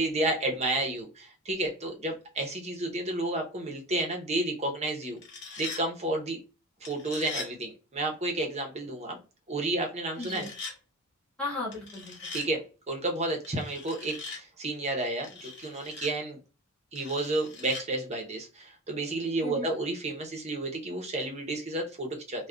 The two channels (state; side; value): normal; both; correlation 0.29